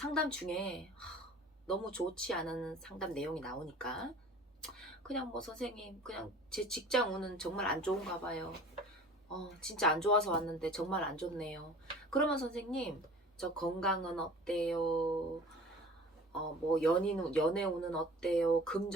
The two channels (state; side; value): normal; both; correlation 0.44